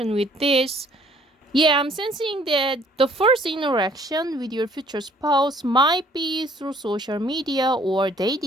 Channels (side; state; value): both; normal; correlation 0.59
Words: with this. Yeah, I'm sensing that the first interaction with your future spouse might be through social media or